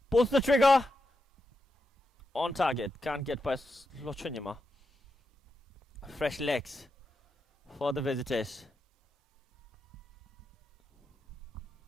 pulls the trigger. On target. Can't get past Lochunyama. Fresh legs for the visitors.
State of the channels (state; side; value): normal; both; correlation 0.86